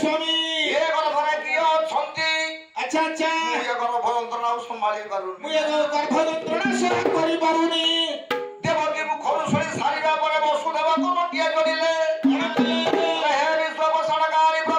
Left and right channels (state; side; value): identical; both; correlation 1.00